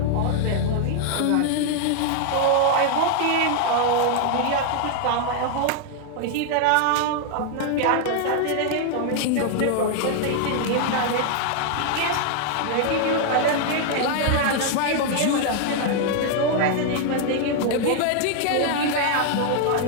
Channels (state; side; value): different; both; correlation 0.00